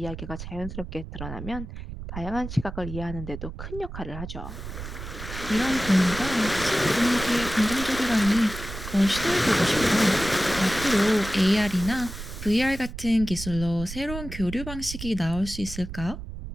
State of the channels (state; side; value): noise; right; rumble, 9 dB below the sound